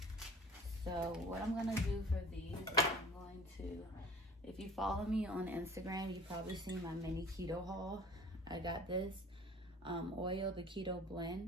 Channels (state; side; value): normal; both; correlation 0.44